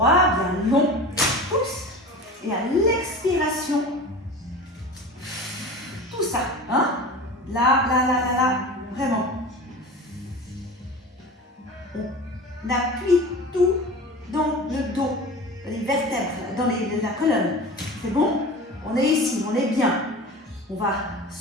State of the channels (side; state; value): both; normal; correlation 0.34